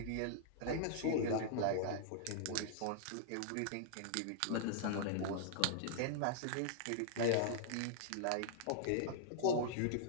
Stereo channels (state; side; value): different; both; correlation -0.01